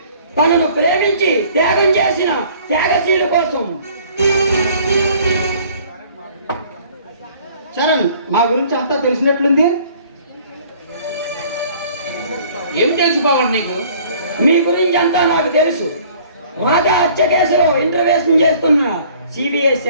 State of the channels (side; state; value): both; inverted; correlation -0.54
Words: తనను ప్రేమించి త్యాగం చేసిన త్యాగశీల కోసం. చరణ్, మా గురించి అంతా తెలిసినట్లుంది. ఏం తెలుసు పవన్ నీకు? మీ గురించి అంతా నాకు తెలుసు. రాజా హత్య కేసులో ఇంటర్వ్యూషన్ చేస్తున్న సిబిఐ